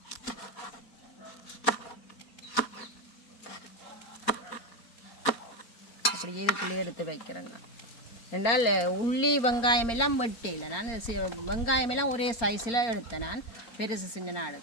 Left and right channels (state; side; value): late; right; 4.3 ms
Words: அப்படியே இதுக்குள்ளே எடுத்து வைக்கிறேங்க. என்றால் உள்ளி வெங்காயம் எல்லாம் வெட்டையில் நான் வெங்காயம் எல்லாம் ஒரே சைஸில் எடுத்தேன் நான் பெருசு சின்னனாக